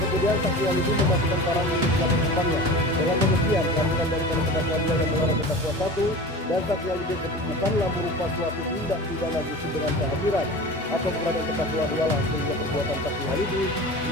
saksi Halidi memasukkan parang milik belakang kumpangnya. Dengan demikian, kehadiran daripada terdakwa 2 yang melarang terdakwa 1 dan saksi Halidi bukanlah merupakan suatu tindak pidana justru dengan kehadiran atau keberadaan terdakwa 2 lah, sehingga perbuatan saksi Halidi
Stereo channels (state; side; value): normal; both; correlation 0.34